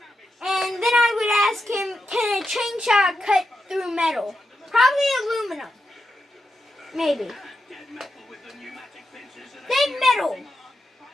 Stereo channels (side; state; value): both; normal; correlation 0.87